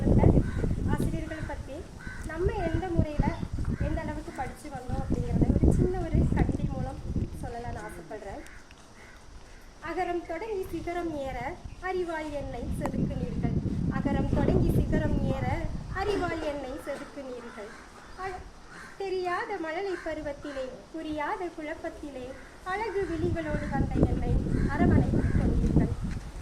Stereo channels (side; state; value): both; identical; correlation 1.00